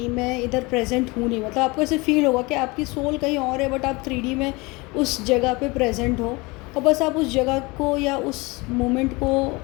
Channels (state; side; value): quieter; right; 25.0 dB